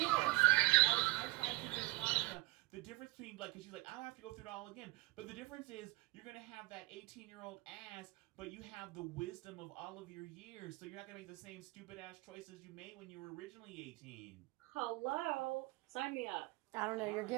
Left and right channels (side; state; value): left; quieter; 22.0 dB